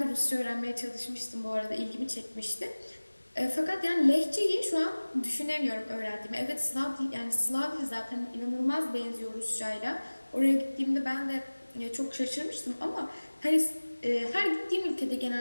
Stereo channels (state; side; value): inverted; both; correlation -1.00